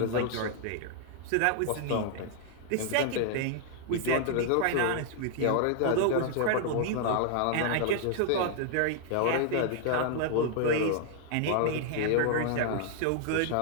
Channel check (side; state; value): both; different; correlation -0.01